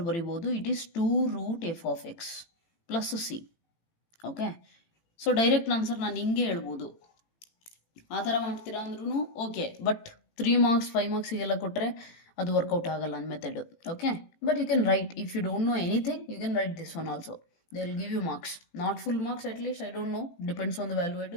ಬರಿಬೋದು, it is 2√f(x) + c. Okay, so direct answer ನಾನು ಹಿಂಗೆ ಹೇಳ್ಬೋದು. ಆ ಥರ ಮಾಡ್ತೀರಾ ಅಂದ್ರೂ ಓಕೆ, ಬಟ್ 3 marks 5 marksiಗೆಲ್ಲ ಕೊಟ್ಟರೆ ಅದು ವರ್ಕೌಟ್ ಆಗಲ್ಲ ನನ್ನ method. Okay, but you can write, if you don't know anything you can write this one also, they will give you marks, not full marks, at least I don't know, depends on the valuate.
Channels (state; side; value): late; right; 18 ms